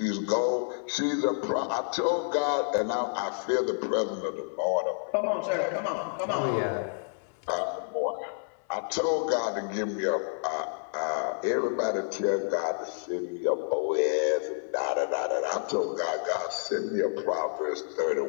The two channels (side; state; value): right; silent; 58 dB below the other